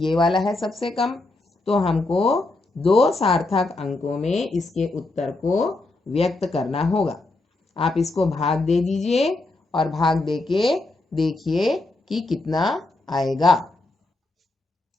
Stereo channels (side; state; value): right; quieter; 3.0 dB